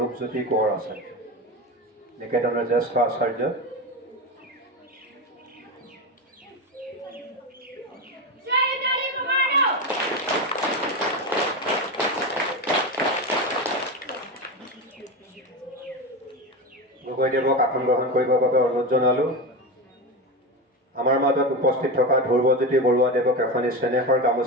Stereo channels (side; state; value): both; normal; correlation 0.19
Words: কোঁৱৰ আচাৰ্য নিকেতনৰ জ্যেষ্ঠ আচাৰ্য। গগৈদেৱক আসন গ্ৰহণ কৰিবৰ বাবে অনুৰোধ জনালোঁ। আমাৰ মাজত উপস্থিত থকা ধ্ৰুৱজ্যোতি বৰুৱা দেৱক এখনি চেনেহৰ